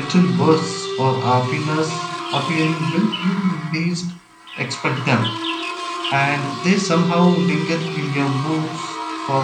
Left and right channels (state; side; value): identical; both; correlation 1.00